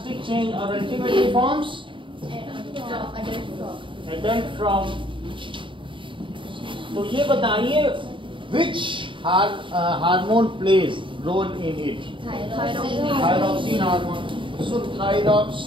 चेंज और अल्टीमेटली फॉर्म्स एडल्ट फ्रॉग. तो ये बताइए which hormone plays role in it? Thyroxine hormone. So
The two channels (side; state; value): left; late; 0.24 ms